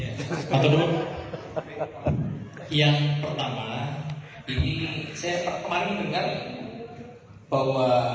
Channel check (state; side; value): identical; both; correlation 1.00